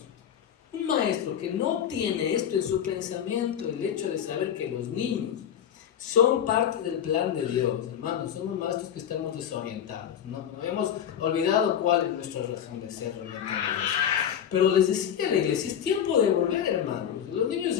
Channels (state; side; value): quieter; right; 9.3 dB